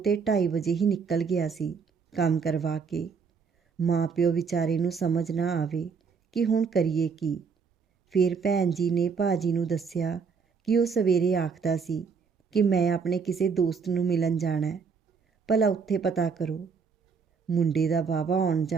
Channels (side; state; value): left; quieter; 5.7 dB